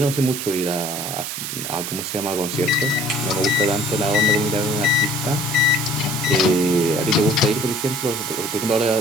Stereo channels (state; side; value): noise; right; hiss, 5 dB below the sound